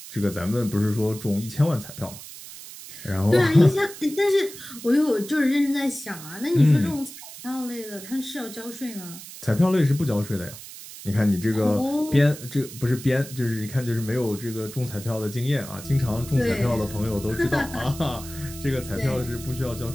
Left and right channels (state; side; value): noise; right; hiss, 14 dB below the sound